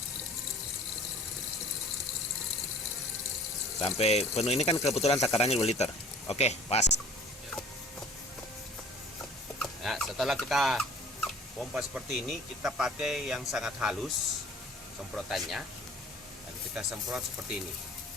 Sampai penuh, ini kan kebetulan takarannya 2 liter. Oke, pas. Nah, setelah kita pompa seperti ini, kita pakai yang sangat halus semprotannya. Dan kita semprot seperti ini.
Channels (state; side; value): normal; both; correlation 0.48